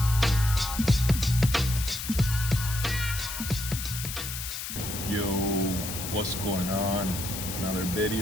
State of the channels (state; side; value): noise; left; hiss, 6 dB below the sound